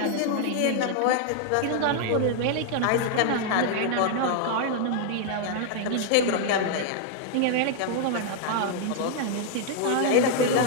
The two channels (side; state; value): both; different; correlation 0.00